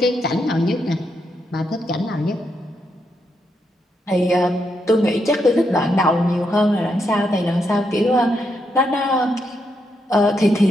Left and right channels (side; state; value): both; normal; correlation 0.81